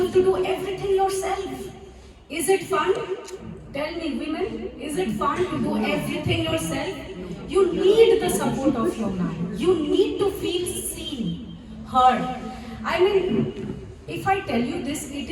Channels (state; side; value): identical; both; correlation 1.00